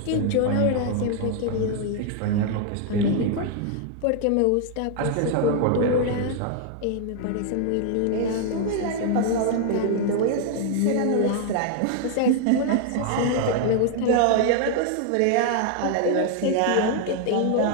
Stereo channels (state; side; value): different; both; correlation 0.00